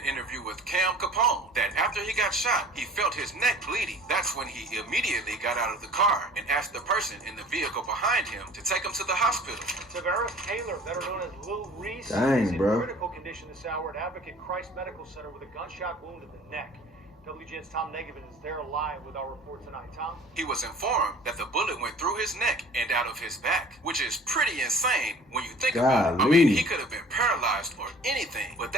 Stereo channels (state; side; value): normal; both; correlation 0.47